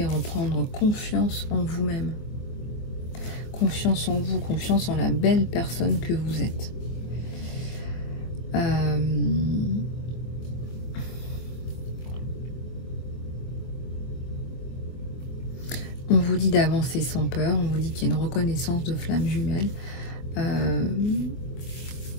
reprendre confiance en vous-même, confiance en vous, confiance en la belle personne que vous êtes. On vous dit d'avancer sans peur, on vous dit qu'il y a une reconnaissance de flamme jumelle,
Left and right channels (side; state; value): right; late; 24 ms